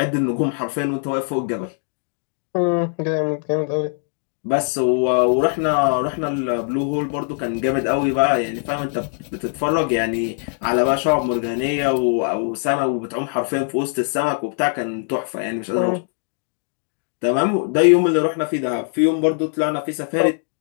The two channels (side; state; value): right; silent; 58 dB below the other